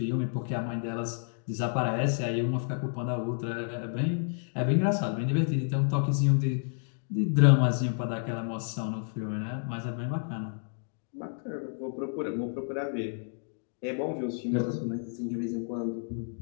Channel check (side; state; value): right; silent; 58 dB below the other